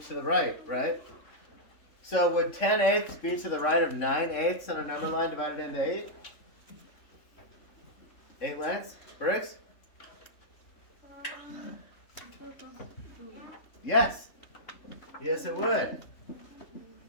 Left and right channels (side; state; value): right; late; 3.3 ms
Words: the right, right? So would 10/8 be to the right of 9/8 on a number line divided into 8? 8 lengths? Briggs? Yes. Yes, it would.